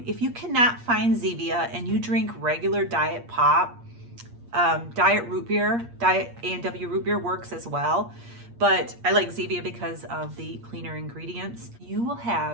If you cannot find Zevia and you drink regular diet pop, diet root beer, diet A&W root beer works as well. But I like Zevia because of the cleaner ingredients. You will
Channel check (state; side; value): late; left; 8.5 ms